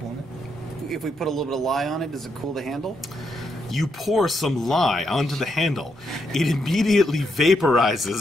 won't it? If we put a little bit of lye on it, does it cool the handle? You pour some lye onto the handle. It immediately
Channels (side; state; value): both; normal; correlation 0.79